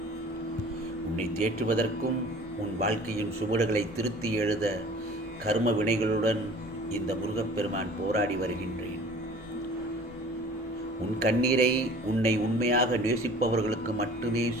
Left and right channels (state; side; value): normal; both; correlation 0.46